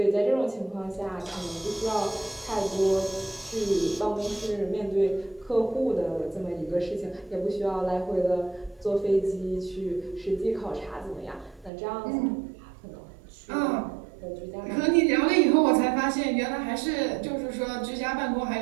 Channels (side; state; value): left; drops out; at 11.7 s